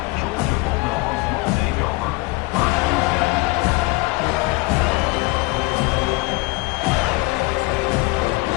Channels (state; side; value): quieter; right; 24.0 dB